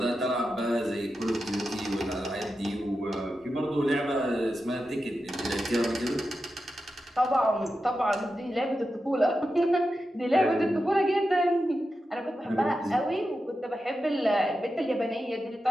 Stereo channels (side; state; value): both; normal; correlation 0.90